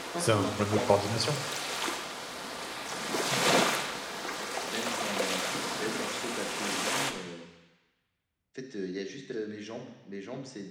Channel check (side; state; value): both; identical; correlation 1.00